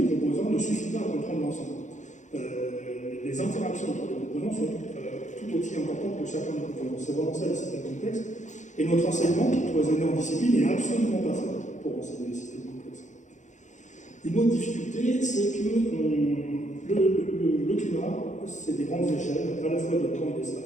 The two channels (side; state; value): right; late; 0.35 ms